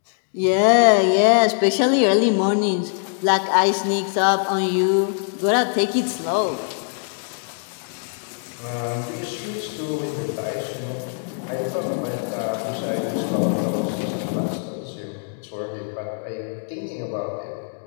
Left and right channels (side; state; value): right; silent; 64 dB below the other